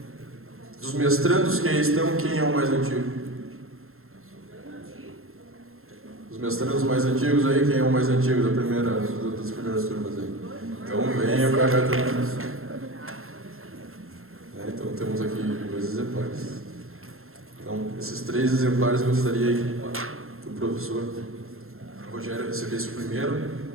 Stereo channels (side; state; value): left; late; 0.62 ms